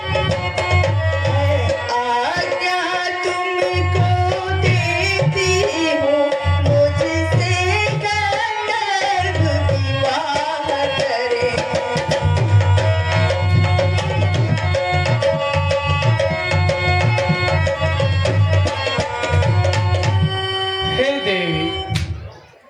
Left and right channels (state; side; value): identical; both; correlation 1.00